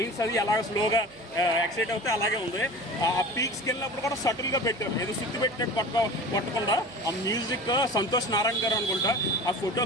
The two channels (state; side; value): noise; right; hum, 28 dB below the sound